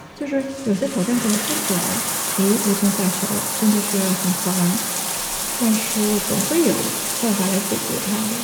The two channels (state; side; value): identical; both; correlation 1.00